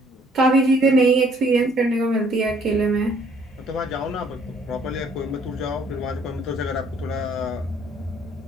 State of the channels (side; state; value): both; normal; correlation 0.62